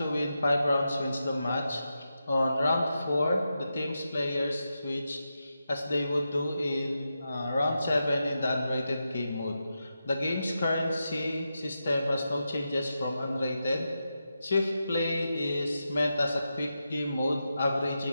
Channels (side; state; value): both; inverted; correlation -0.88